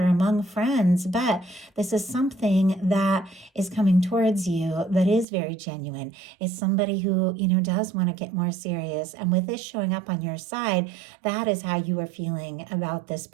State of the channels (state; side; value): drops out; left; at 5.2 s